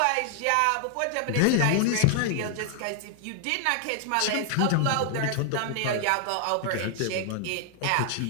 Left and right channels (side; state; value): both; different; correlation 0.00